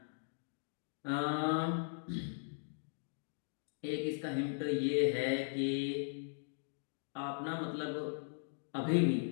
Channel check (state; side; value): silent; right; digital silence